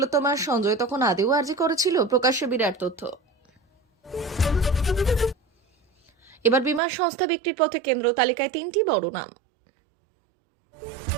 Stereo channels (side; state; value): left; drops out; at 6.8 s